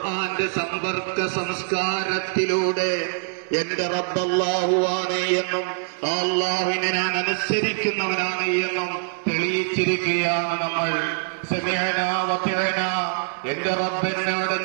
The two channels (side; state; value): left; silent; 63 dB below the other